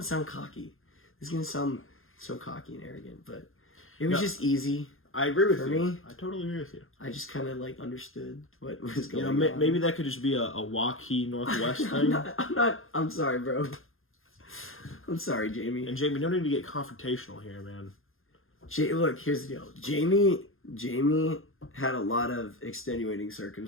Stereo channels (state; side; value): late; right; 0.60 ms